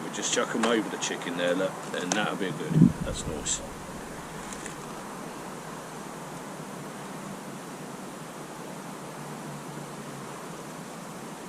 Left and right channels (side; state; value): both; identical; correlation 1.00